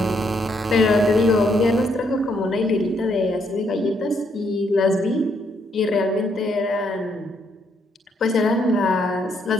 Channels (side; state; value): both; normal; correlation 0.73